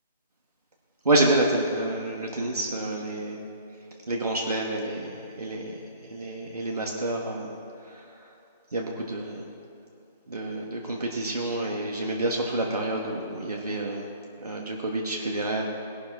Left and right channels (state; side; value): inverted; both; correlation -0.49